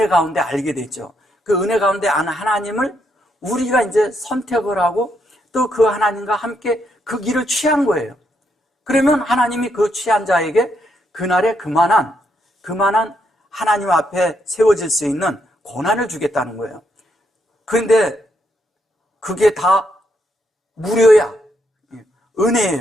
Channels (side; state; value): both; normal; correlation 0.77